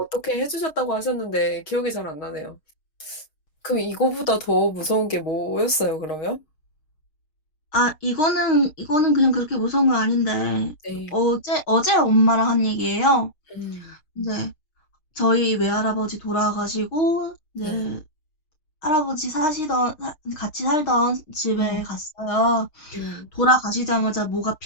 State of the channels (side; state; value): right; late; 6.4 ms